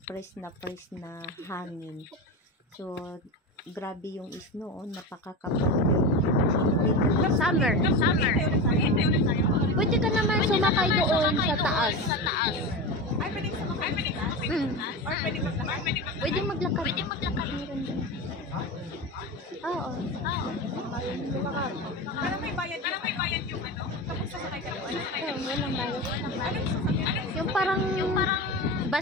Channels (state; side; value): normal; both; correlation 0.23